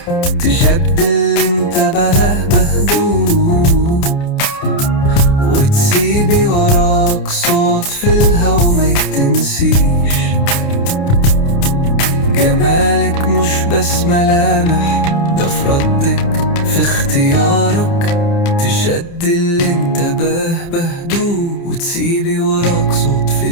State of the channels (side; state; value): right; late; 29 ms